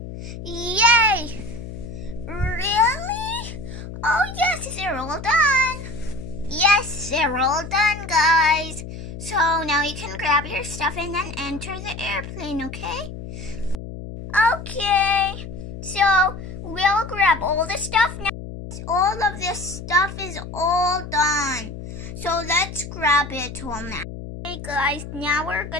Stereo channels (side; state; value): left; noise; hum, 10 dB below the sound